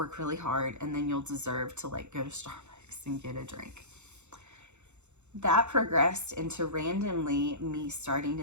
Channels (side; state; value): left; late; 0.83 ms